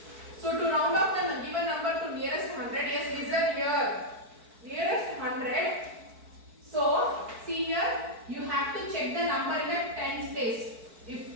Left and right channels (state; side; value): late; left; 4.5 ms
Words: So to round off the given number to nearest 100, yes, listen here. Nearest 100. So see here, you have to check the number in the tens place.